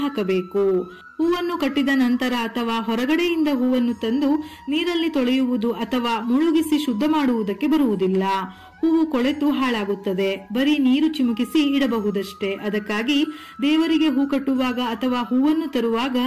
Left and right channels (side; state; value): both; identical; correlation 1.00